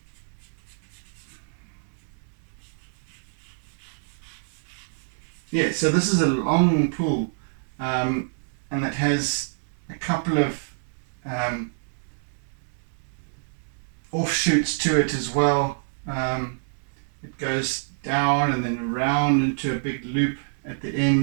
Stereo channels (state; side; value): silent; left; digital silence